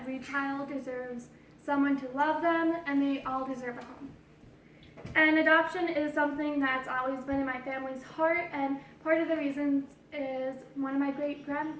child deserves someone to love them, and they all deserve a home. And adoption is something that's always been in my family's heart, and part of the reasons is one of my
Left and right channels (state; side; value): identical; both; correlation 1.00